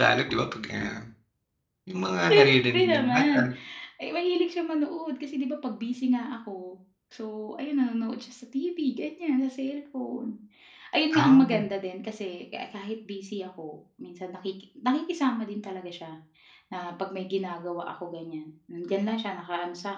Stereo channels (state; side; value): identical; both; correlation 1.00